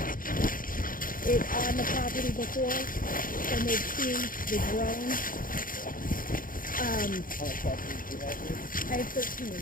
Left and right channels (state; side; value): late; right; 0.40 ms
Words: it on the property before, and they've seen the drone. How much property do you have here? I have 13